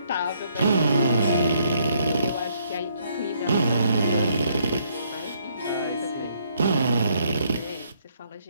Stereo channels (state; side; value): inverted; both; correlation -0.70